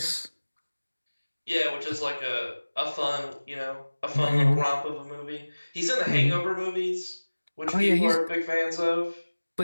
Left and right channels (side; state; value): both; inverted; correlation -1.00